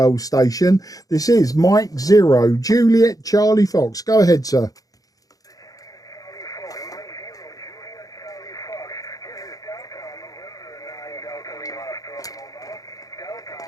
station. This is Mike 0, Juliet Charlie Fox. Go ahead, sir.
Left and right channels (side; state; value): right; late; 0.17 ms